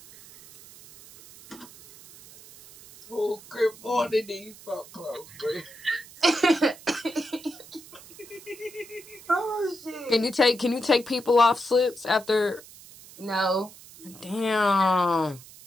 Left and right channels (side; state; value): right; noise; hiss, 20 dB below the sound